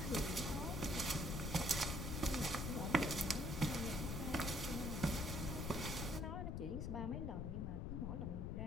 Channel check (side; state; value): left; noise; rumble, 1 dB below the sound